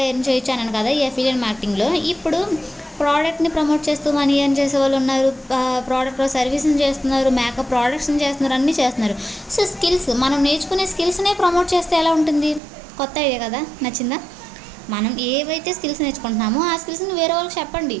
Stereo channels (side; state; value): left; drops out; at 12.6 s